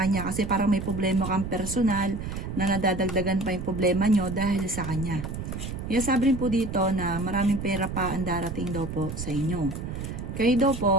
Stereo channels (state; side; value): noise; right; rumble, 6 dB below the sound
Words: kasi parang may problema kang personal na nadadagdagan pa yung problema nyo dahil sa kanya. Sabi rin po dito na maraming pera pa ang darating daw po sa inyo. Kayo daw